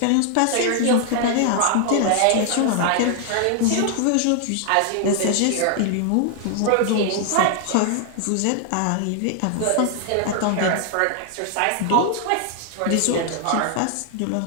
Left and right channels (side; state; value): both; different; correlation 0.00